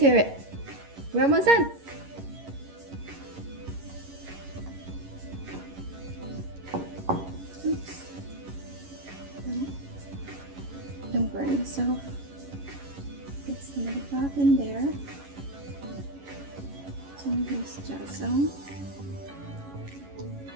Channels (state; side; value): late; left; 11 ms